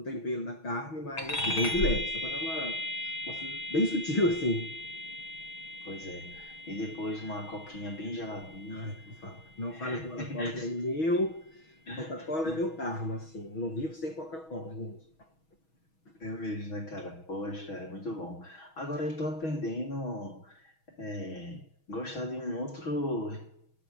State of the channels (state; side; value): late; right; 6.3 ms